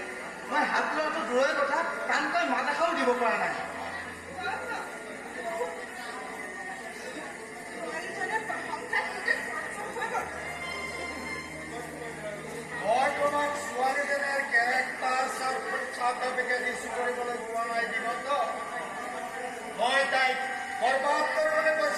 মই হাত লোৱাটো দূৰৰে কথা, টানকৈ মাত এষাৰো দিব পৰা নাই। মই তোমাক ছোৱালীজনীৰ কেৰেক্টাৰ চাৰ্টিফিকেট ইছ্যু কৰিবলৈ পোৱা নাই দিনত। মই তাইক বৰবাদ কৰিবলৈ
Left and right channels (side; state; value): both; identical; correlation 1.00